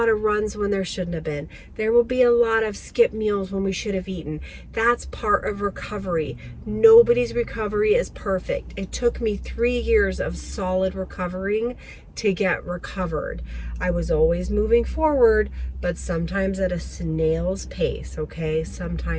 of runs when there shouldn't have been. There will be a lot of skip meals when we should have eaten. That's part of recovery. Nobody's recovery is perfect. It took me 3 years of solid recovering to get recovered. I was always moving forward, but sometimes at a snail's pace, okay?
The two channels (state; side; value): identical; both; correlation 1.00